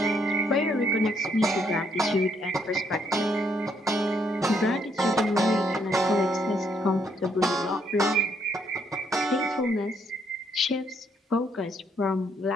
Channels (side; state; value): both; normal; correlation 0.72